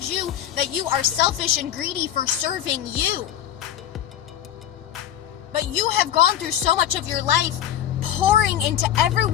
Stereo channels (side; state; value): right; quieter; 11.0 dB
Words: you that you are selfish and greedy for serving you. But you have gone through so much of your life pouring into